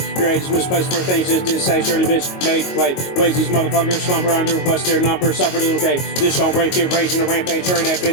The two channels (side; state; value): right; late; 22 ms